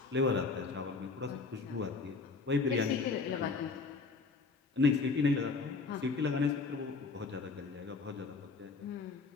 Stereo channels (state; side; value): quieter; right; 4.4 dB